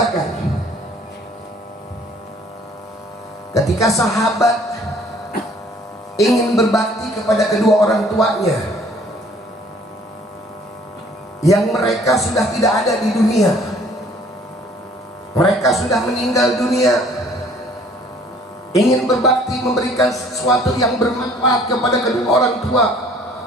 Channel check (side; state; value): both; normal; correlation 0.56